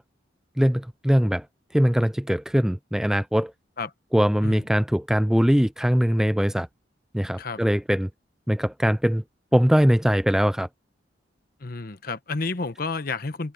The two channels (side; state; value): both; normal; correlation 0.97